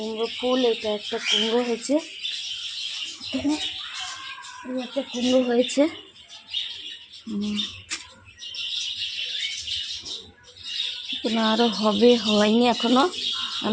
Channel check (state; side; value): identical; both; correlation 1.00